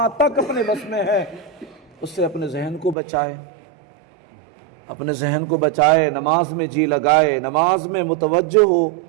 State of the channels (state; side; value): drops out; left; at 3.0 s